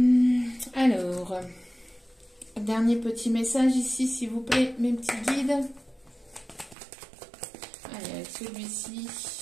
Alors, dernier petit message ici, s'il vous plaît, mes petits guides. Allez, avec celui-ci.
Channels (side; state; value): left; drops out; at 6.8 s